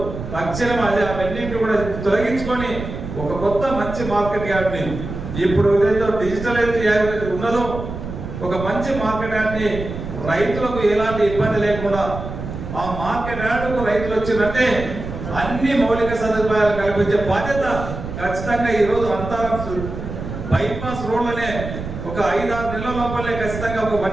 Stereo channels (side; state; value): right; noise; rumble, 8 dB below the sound